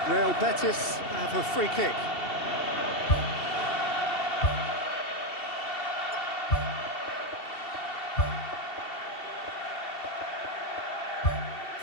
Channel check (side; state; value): right; late; 2.7 ms